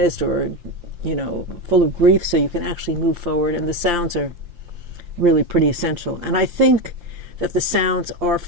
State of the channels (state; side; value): late; left; 5.7 ms